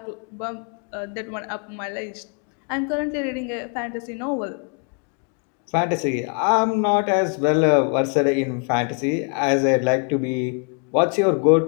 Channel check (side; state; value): right; quieter; 38.9 dB